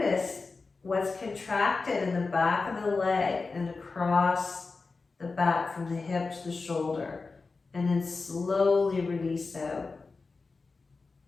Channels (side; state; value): right; quieter; 4.1 dB